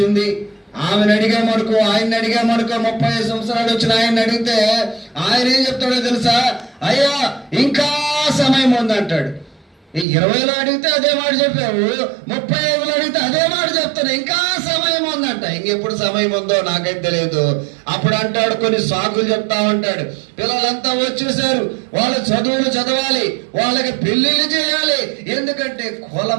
ఆమెను అడిగామనుకో, ఆయన్ని అడిగామనుకో, 35 సంవత్సరాలు వచ్చిన ఆయన్ని అడిగితే ఆయన ఏం చెప్తాడో తెలుసా? అయ్యా ఇంకా సమయం ఉంది అంటాడు. 20లో అడిగితే అదే మాట చెప్పావు, 35లో అడిగితే అదే మాట చెప్తాను, ఇంకా సమయం ఉందంట. ఇంకెప్పుడు సమయం ఉందో నాకైతే తెలియదు. అప్పుడు అంటాడు, కొన్ని సాకులు చెప్తా ఉంటాడు. పిల్లలంతా వచ్చేసారు, వాళ్ళ చదువులు చదవాలి, వాళ్ళకి పెళ్లిళ్ళు చేయాలి, ఎందుకంటే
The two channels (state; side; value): drops out; left; at 10.1 s